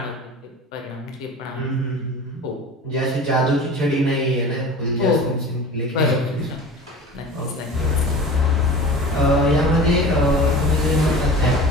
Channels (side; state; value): both; normal; correlation 0.37